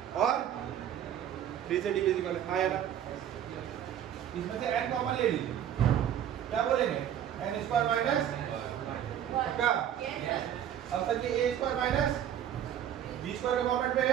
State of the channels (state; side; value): quieter; left; 10.2 dB